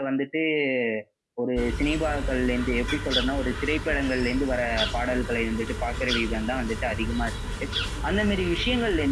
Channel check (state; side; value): identical; both; correlation 1.00